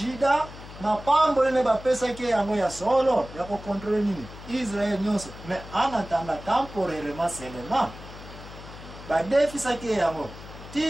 mapambo ne ba pesa ke yango ya solo ya ko contrôler nini Israël nyonso mais en attendant temporairement seulement ba defisa ke yango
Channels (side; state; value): left; noise; hum, 15 dB below the sound